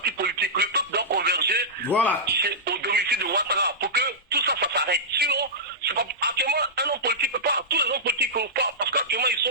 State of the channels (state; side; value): normal; both; correlation -0.14